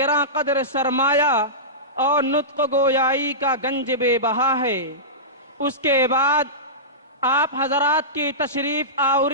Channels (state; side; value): normal; both; correlation -0.18